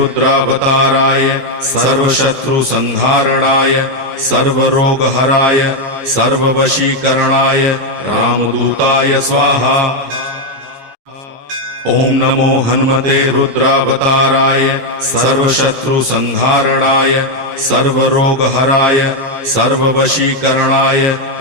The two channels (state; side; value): late; left; 14 ms